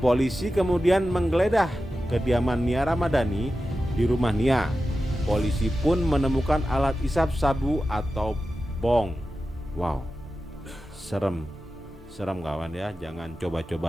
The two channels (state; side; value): normal; both; correlation 0.92